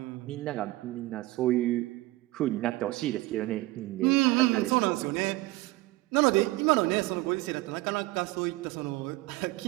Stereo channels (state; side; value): quieter; left; 19.4 dB